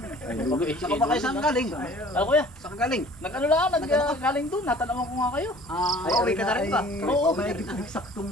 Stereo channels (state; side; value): normal; both; correlation 0.49